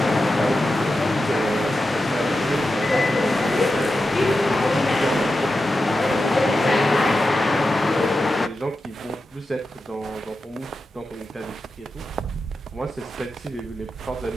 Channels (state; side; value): normal; both; correlation 0.91